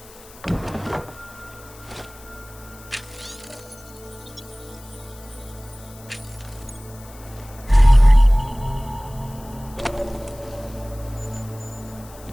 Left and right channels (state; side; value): noise; left; hiss, 21 dB below the sound